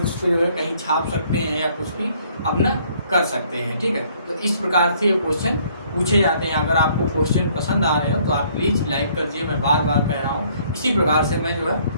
पर जो है कहीं छाप सकते हैं या कुछ भी अपना कर सकते हैं, ठीक है। तो इस प्रकार से ये क्वेश्चन पूछे जाते हैं। अगर आपको क्वेश्चन पसंद आ रहे हो तो आप प्लीज़ लाइक कर दीजिए, मैं बार बार कह रहा हूँ। इसी प्रकार से मैं जो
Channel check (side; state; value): both; inverted; correlation -0.62